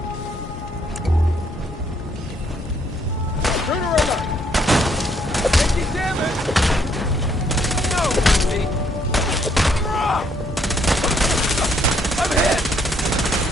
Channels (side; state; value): both; normal; correlation 0.69